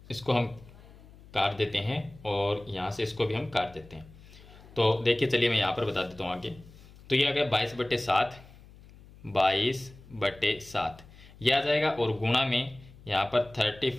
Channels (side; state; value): left; noise; hum, 22 dB below the sound